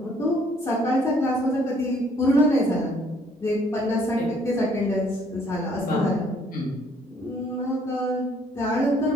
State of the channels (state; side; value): normal; both; correlation 0.63